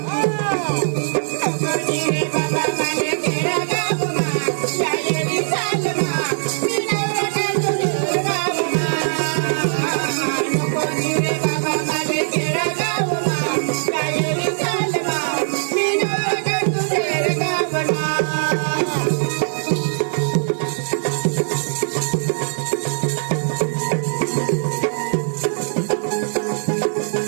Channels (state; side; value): silent; left; digital silence